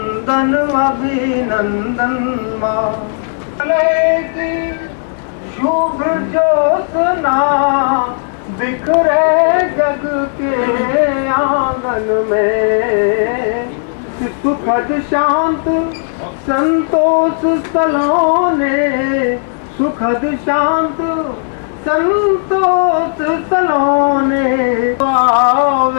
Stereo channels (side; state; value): right; silent; digital silence